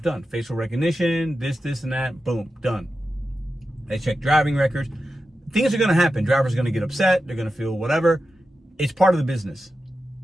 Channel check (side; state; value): both; normal; correlation 0.91